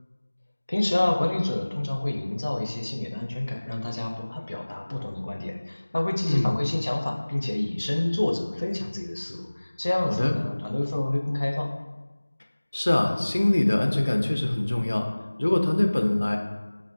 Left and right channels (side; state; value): both; inverted; correlation -1.00